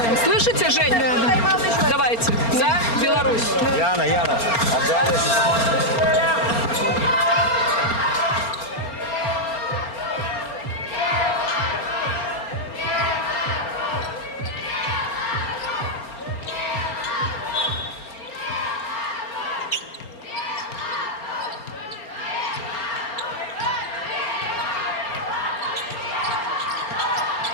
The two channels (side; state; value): right; late; 4.3 ms